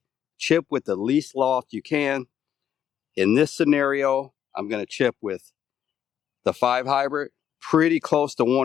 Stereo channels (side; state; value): right; quieter; 9.5 dB